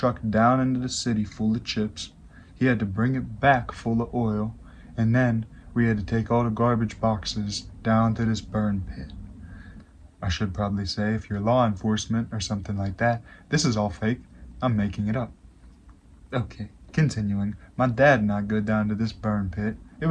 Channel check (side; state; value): both; identical; correlation 1.00